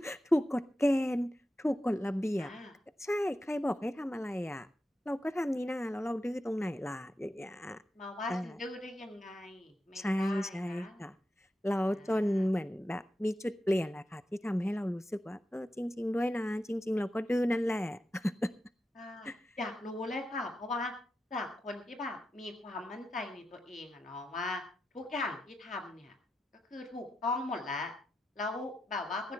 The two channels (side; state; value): both; normal; correlation 0.89